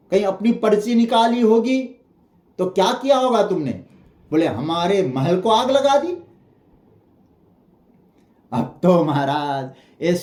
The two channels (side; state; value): both; identical; correlation 1.00